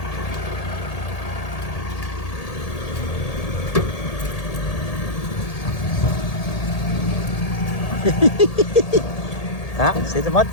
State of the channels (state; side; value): late; right; 1.8 ms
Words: Ah, see the mud